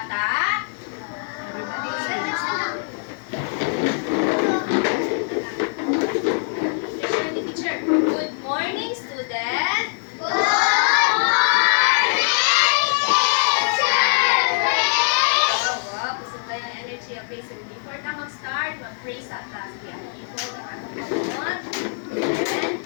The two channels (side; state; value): right; silent; 64 dB below the other